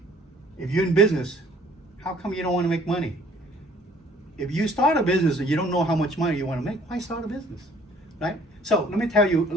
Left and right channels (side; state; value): both; normal; correlation 0.57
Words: if you're in business, how come you don't want to make money? If you start a business and you don't know how much money you want to make, why start a business, right? So let me tell you,